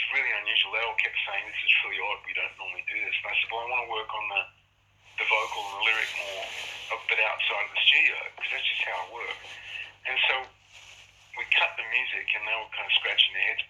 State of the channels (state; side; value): identical; both; correlation 1.00